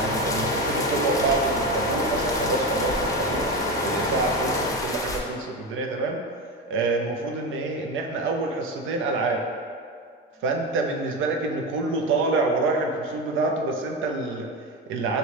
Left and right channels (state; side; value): normal; both; correlation 0.19